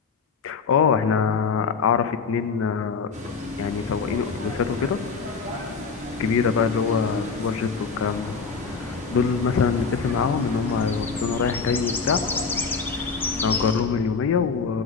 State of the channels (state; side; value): quieter; right; 5.2 dB